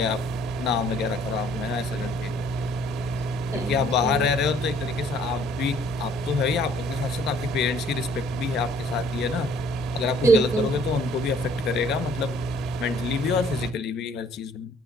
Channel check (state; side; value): normal; both; correlation 0.59